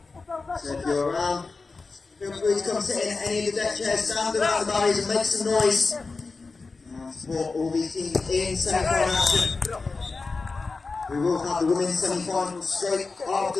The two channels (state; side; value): quieter; right; 4.1 dB